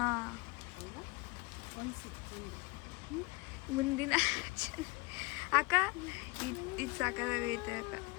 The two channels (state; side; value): quieter; right; 24.8 dB